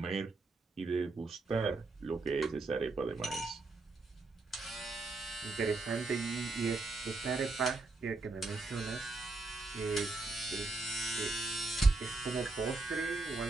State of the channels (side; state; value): left; quieter; 3.5 dB